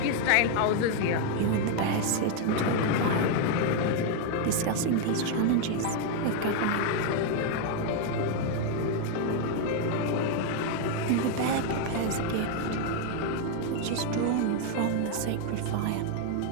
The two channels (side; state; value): both; different; correlation 0.01